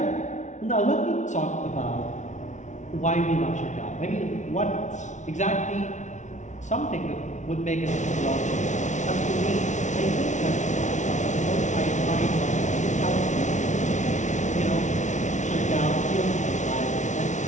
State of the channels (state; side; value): late; right; 0.35 ms